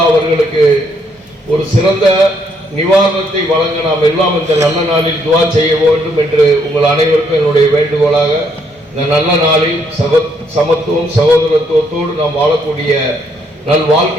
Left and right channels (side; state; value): both; normal; correlation 0.71